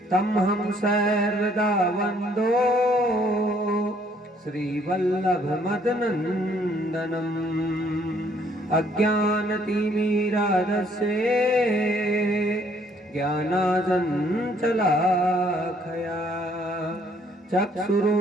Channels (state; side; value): normal; both; correlation 0.64